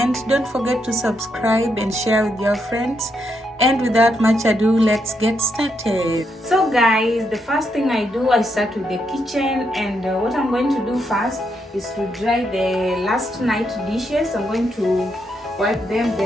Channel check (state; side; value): normal; both; correlation 0.79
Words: Don't forget to subscribe and share with your friends. And without much ado, let's get started. So guys, the first thing I do, I start with the kitchen, and what I'm going to do first is to dry the last night dishes. I'm going to wipe them,